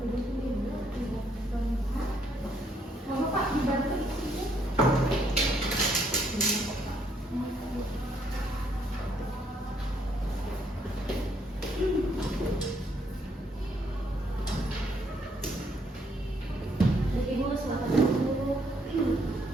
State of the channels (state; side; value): normal; both; correlation 0.70